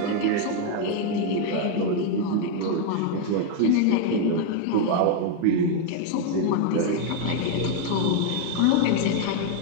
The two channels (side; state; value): both; different; correlation 0.00